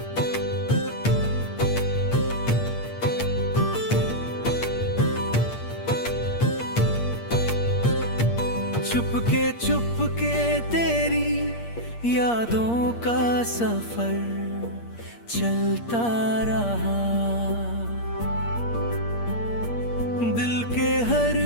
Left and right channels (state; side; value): late; right; 8.5 ms